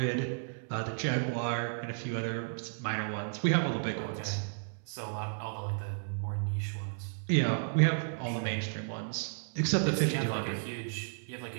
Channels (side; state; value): left; silent; 56 dB below the other